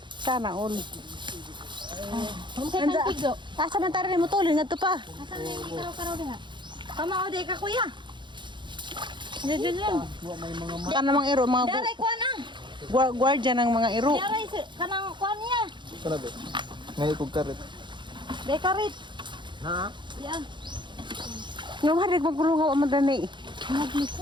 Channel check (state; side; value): late; left; 0.23 ms